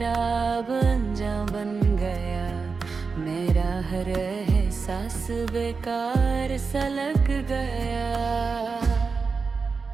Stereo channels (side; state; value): left; quieter; 4.8 dB